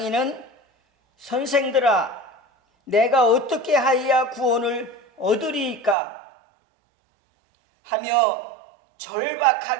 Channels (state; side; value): drops out; left; at 6.0 s